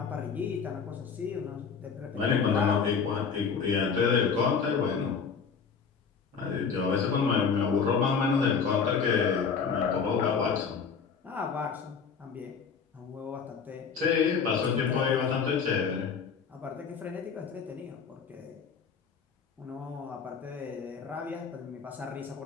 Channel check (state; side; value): quieter; right; 6.0 dB